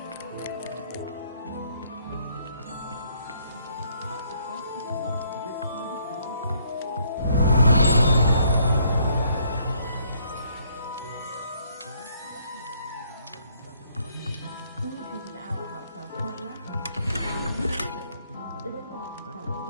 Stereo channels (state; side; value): inverted; both; correlation -0.67